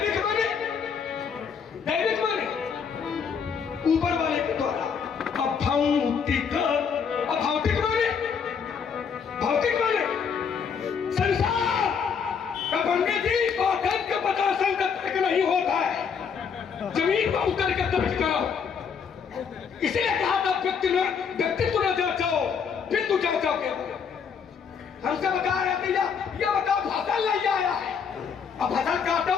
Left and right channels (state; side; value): quieter; right; 6.5 dB